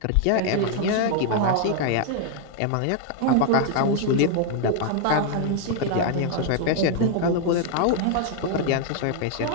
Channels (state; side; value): different; both; correlation 0.00